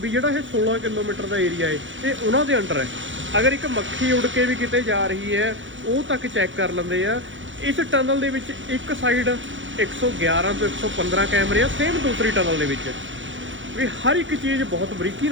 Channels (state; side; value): late; left; 0.56 ms